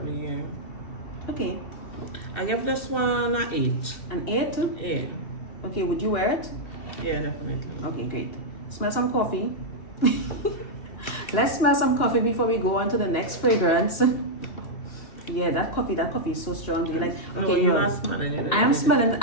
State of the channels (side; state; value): right; late; 2.7 ms